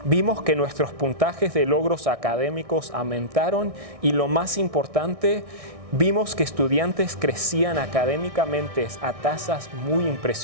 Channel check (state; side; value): late; left; 1.6 ms